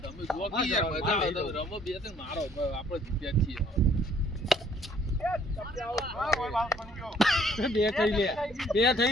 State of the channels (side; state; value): both; normal; correlation 0.61